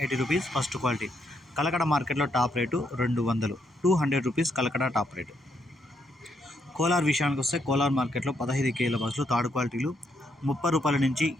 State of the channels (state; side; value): normal; both; correlation 0.76